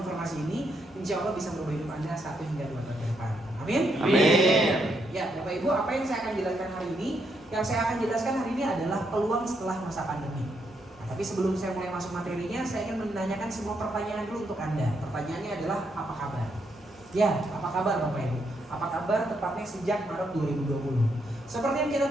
ini, insya Allah bisa merubah hidup Anda 1 hingga 2 tahun ke depan. Amin. Amin. Ya, Bapak Ibu, apa yang saya akan jelaskan hari ini? Yang saya akan jelaskan hari ini adalah peluang setelah masa pandemi. Nah, tapi sebelum saya mulai masuk materinya, saya ingin menanyakan semua pertanyaan dulu untuk Anda. Pertanyaannya adalah apa kabar? Ya, apa kabar Bapak Ibu? Apa kabar tepatnya sejak Maret 2020? Seperti yang kita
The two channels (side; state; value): both; normal; correlation 0.78